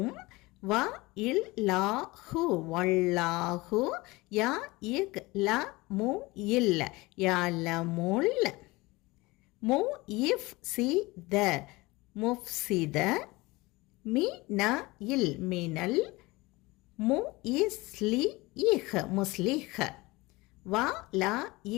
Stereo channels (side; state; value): right; quieter; 22.2 dB